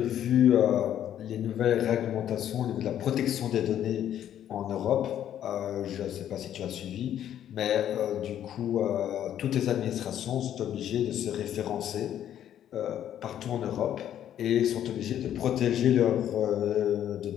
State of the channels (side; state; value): right; quieter; 10.7 dB